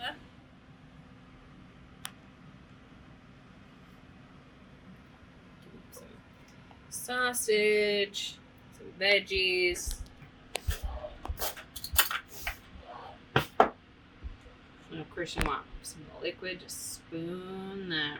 Sausage, some veggies. Of course, you want some liquid. Just spoon that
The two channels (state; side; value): identical; both; correlation 1.00